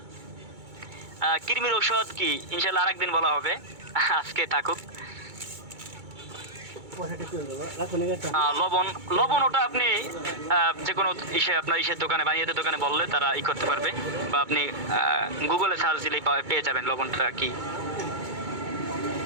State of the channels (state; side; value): late; left; 2.2 ms